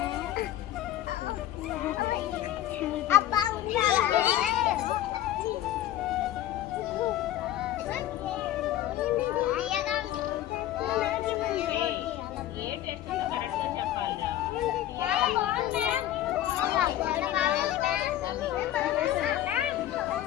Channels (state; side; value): quieter; right; 12.9 dB